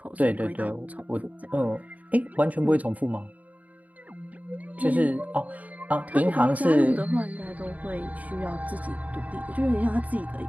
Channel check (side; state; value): left; late; 0.073 ms